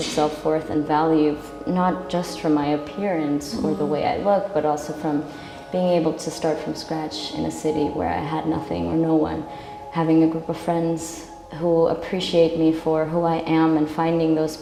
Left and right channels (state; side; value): identical; both; correlation 1.00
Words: self-worth and value not just from my appearance or the way I look, but also from being able to start from scratch in a city where I had nothing or no one, having a group of friends who appreciate me for who I am, and finding those